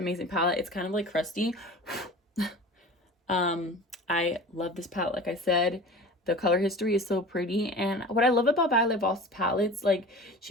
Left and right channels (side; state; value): both; normal; correlation 0.38